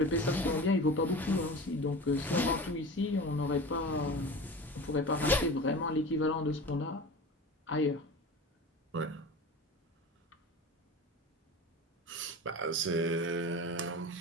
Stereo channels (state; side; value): normal; both; correlation 0.33